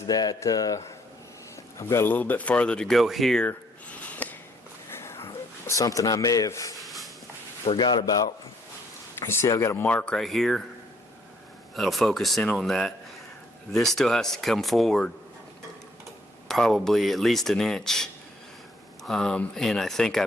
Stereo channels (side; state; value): both; normal; correlation 0.66